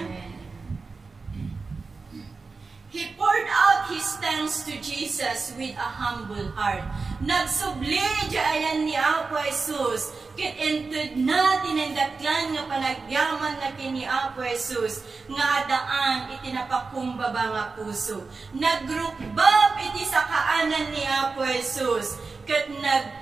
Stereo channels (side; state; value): left; quieter; 4.2 dB